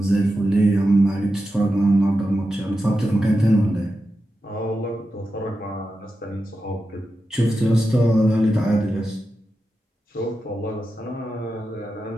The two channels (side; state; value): both; normal; correlation 0.90